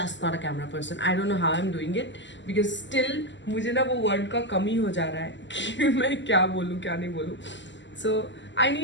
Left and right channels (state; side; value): late; right; 0.53 ms